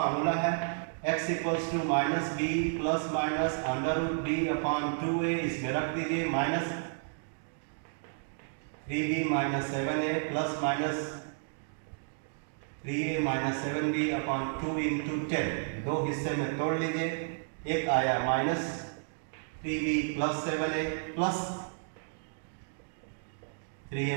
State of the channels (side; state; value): left; silent; digital silence